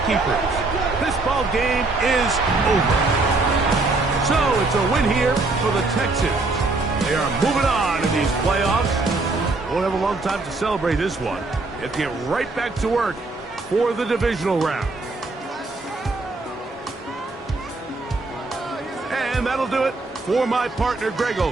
keepers. This ball game is over. So it's a win here for the Texans. They are moving on in these playoffs. Won't have a long time to celebrate this one. They have to get right back to work for the divisional round. And that'll do it for my partner, Greg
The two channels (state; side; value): quieter; left; 3.4 dB